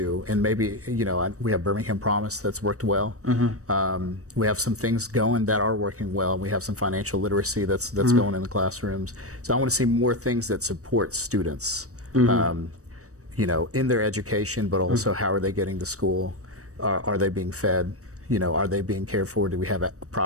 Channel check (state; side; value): late; left; 0.65 ms